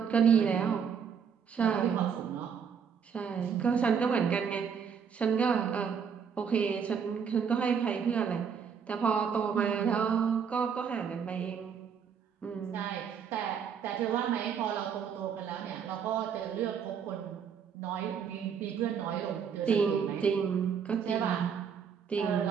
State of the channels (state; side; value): quieter; left; 7.0 dB